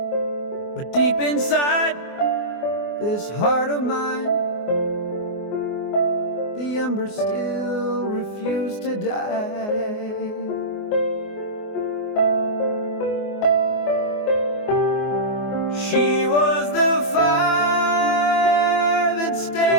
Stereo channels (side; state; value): right; late; 24 ms